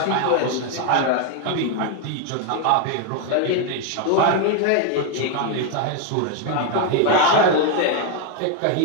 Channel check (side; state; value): both; different; correlation 0.01